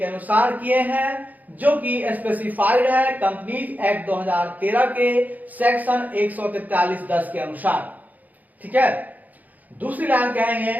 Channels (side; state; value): left; late; 0.080 ms